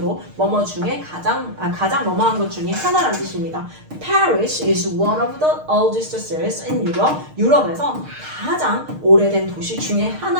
뭐뭐 중에 가장 뭐뭐한 것 중에 하나라는 뜻입니다. Paris is one of the oldest cities in Europe. 유럽에서 가장 오래된 도시 중에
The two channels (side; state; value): left; late; 6.5 ms